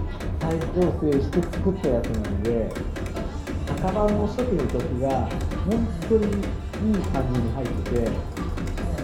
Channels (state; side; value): identical; both; correlation 1.00